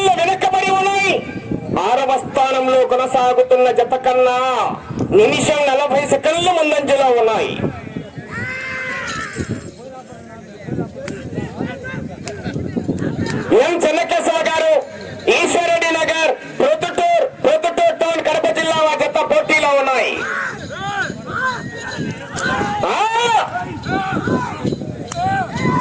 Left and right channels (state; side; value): identical; both; correlation 1.00